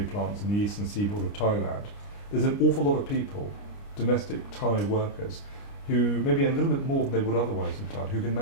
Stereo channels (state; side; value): late; right; 29 ms